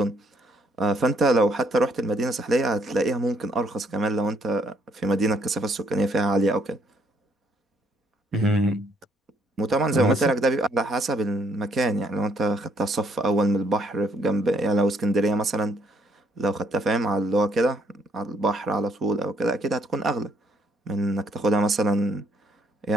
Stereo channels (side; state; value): both; normal; correlation 0.69